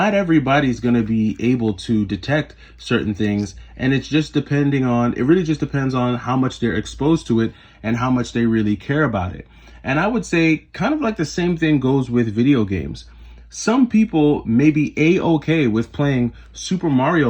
everybody's going to be able to detect certain things, and it really just depends on how much they're exposed to it and how much they really care about it. And I would say kind of like the same thing goes with video games. Some people may be a-okay with playing Super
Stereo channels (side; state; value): both; identical; correlation 1.00